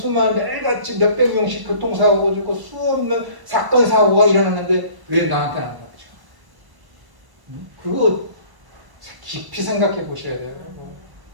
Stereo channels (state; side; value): late; left; 1.1 ms